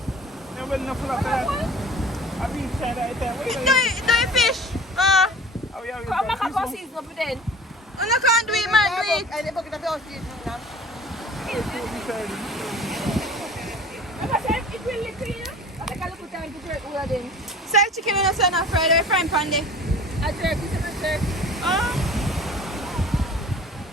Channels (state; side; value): normal; both; correlation 0.42